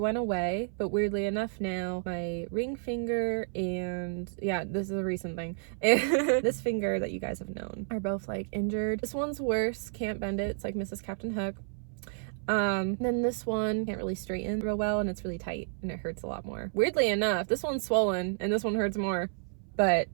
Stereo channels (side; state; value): left; silent; 57 dB below the other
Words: away, but weirdly enough now, my ring finger and yeah, this is a recent thing, and this finger that you guys have known are both like injured. This one's worse, can't bend it. It's like Mrs. Captain Hook. Then this one can't really straighten real well, and it's really tight and it hurts a lot more. Weirdly enough, this one's swollen and this one hurts more. But